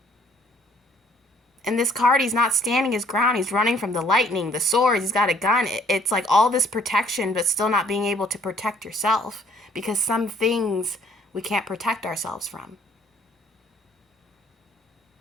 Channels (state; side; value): normal; both; correlation 0.61